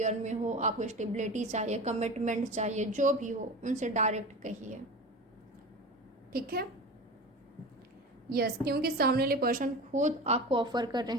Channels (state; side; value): normal; both; correlation 0.31